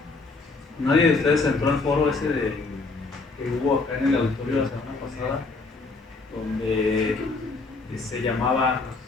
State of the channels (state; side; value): quieter; right; 3.8 dB